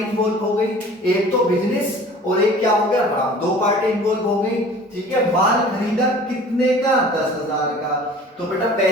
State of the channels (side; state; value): both; normal; correlation 0.45